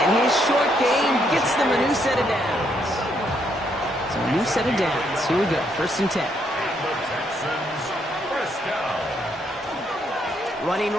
his short game gets them a new set of downs. So a new set of downs. Here we go. 1st and 10. And the Texans first down. Running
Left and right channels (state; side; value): normal; both; correlation 0.74